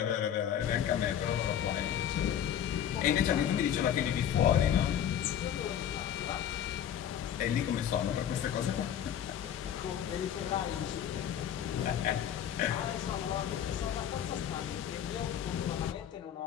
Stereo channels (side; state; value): right; quieter; 9.7 dB